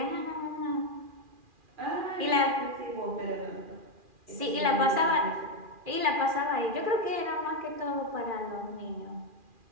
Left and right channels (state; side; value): late; left; 2.4 ms